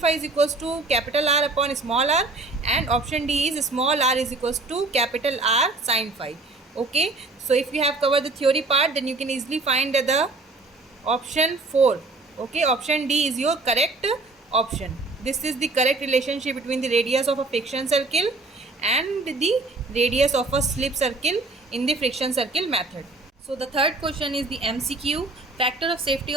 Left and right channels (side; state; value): left; quieter; 3.3 dB